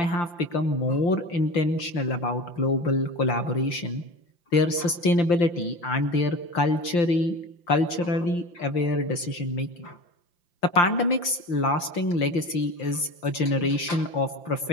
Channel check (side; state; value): right; late; 5.8 ms